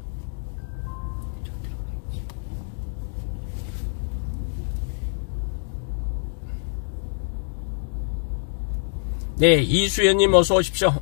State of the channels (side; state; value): right; silent; digital silence